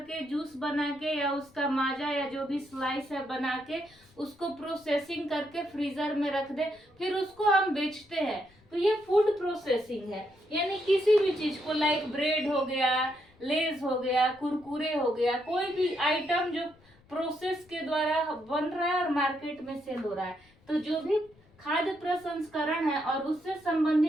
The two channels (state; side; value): noise; left; rumble, 29 dB below the sound